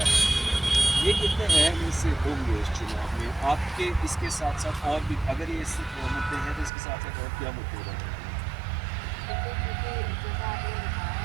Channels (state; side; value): drops out; left; at 6.7 s